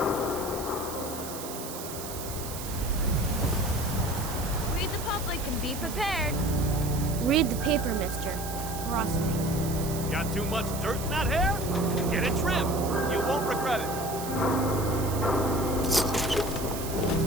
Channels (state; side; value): noise; right; hiss, 10 dB below the sound